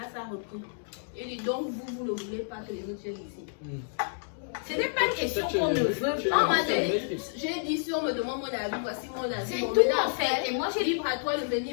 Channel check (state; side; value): silent; right; digital silence